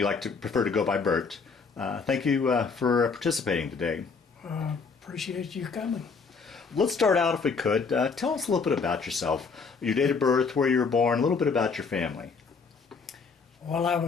prefer to go by Bert. Thank you for participating today. Appreciate you coming. Let's start out, if we could. Tell us a little bit about yourself, your date of birth, where you were born, a little bit about your family. Well, I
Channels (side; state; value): right; quieter; 5.0 dB